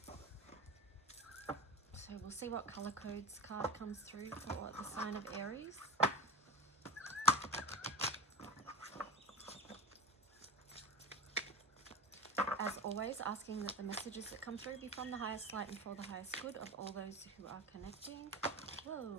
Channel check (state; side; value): normal; both; correlation 0.30